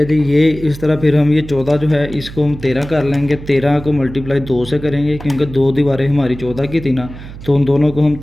जी। ये इस तरह फिर हम ये 14 जो है इसको हम 13 कर लेंगे। 13 को मल्टीप्लाई 2 से करेंगे क्योंकि 2 दीवारें हमारी 14 की थी ना, तो उन दोनों को हम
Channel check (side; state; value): right; noise; hum, 14 dB below the sound